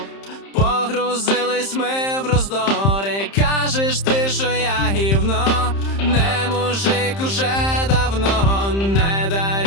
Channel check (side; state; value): right; late; 30 ms